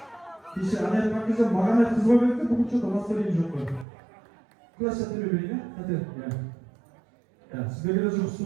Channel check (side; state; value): left; drops out; at 3.9 s